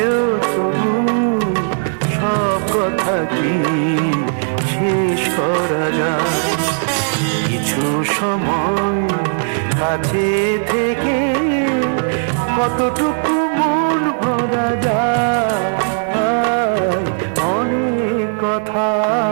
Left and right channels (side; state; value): left; silent; digital silence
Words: তবু সব কথা কি শেষ করা যায়? কিছু সময় কাছে থেকে কতটুকু মন ভরা যায়। অনেক কথা